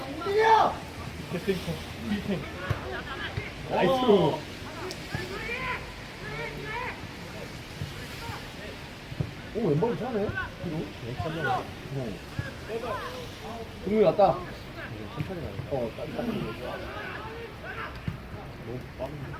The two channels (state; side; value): identical; both; correlation 1.00